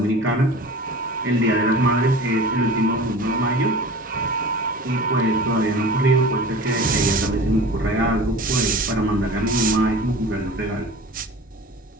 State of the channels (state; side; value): normal; both; correlation 0.38